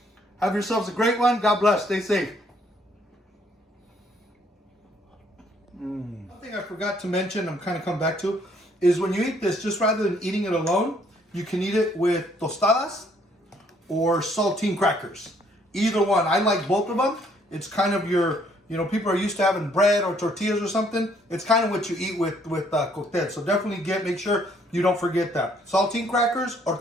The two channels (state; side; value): normal; both; correlation 0.65